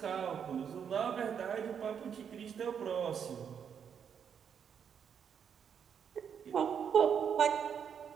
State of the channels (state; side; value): quieter; left; 7.6 dB